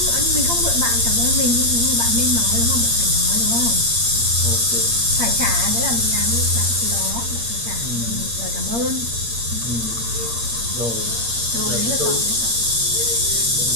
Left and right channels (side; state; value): left; late; 8.6 ms